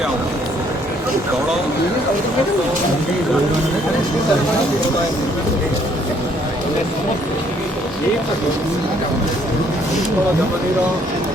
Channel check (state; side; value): normal; both; correlation 0.65